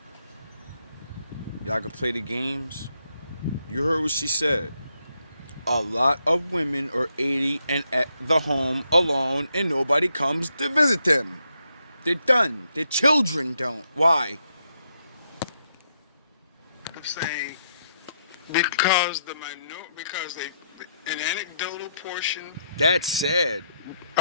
Y'all can play the games. You heard what she said. A lot of women are 80 and at the home alone and nobody comes to visit them. They're done. Their children don't. Why? I'm saying because an anecdotal portion That's sad.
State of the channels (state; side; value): inverted; both; correlation -0.78